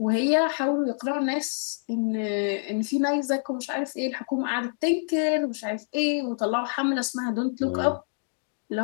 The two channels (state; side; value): silent; right; digital silence